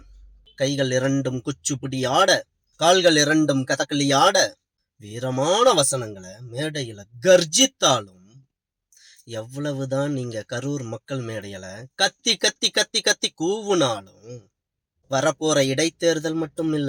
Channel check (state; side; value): identical; both; correlation 1.00